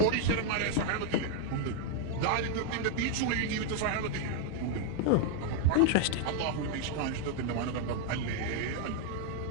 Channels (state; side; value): different; both; correlation 0.00